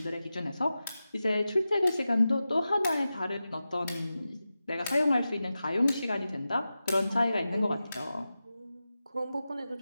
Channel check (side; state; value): both; inverted; correlation -0.93